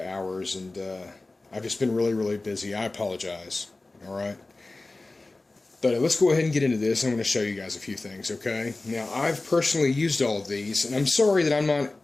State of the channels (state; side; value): quieter; right; 3.1 dB